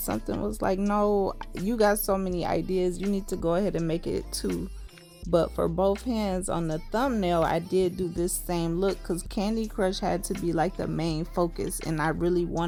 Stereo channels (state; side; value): identical; both; correlation 1.00